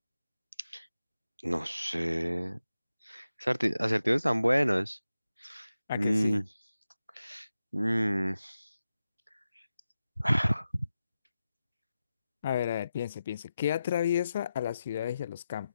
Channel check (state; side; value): inverted; both; correlation -0.91